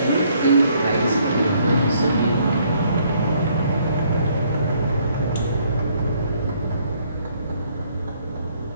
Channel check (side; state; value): both; inverted; correlation -0.66